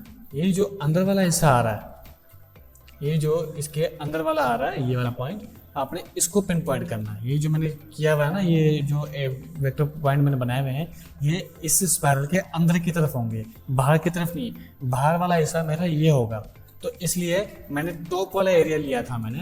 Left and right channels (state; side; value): identical; both; correlation 1.00